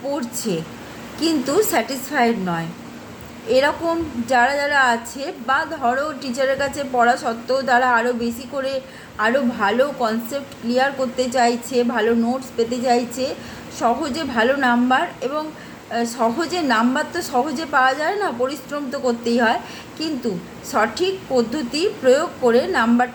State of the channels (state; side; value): identical; both; correlation 1.00